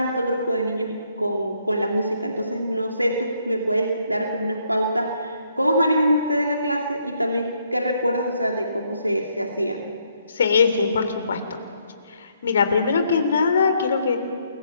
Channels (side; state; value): both; inverted; correlation -0.72